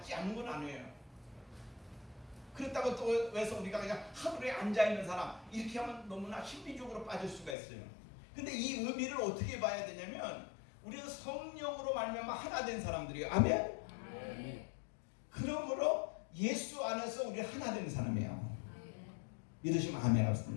않는 건 아니에요. 그렇다고 또 왜서 우리가 그냥 하늘에 앉아있는 사람 이렇게 하면 너무나 심리적으로 빠질 수가 있어요. 근데 이 의미를 어떻게 봐야 되냐면 우리는 성령으로 말미암아 하나 된 사람들이에요. 아멘? 그러므로 예수 안에서 우리 하나 된 사람이에요. 믿으시면 아멘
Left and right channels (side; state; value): right; drops out; at 7.6 s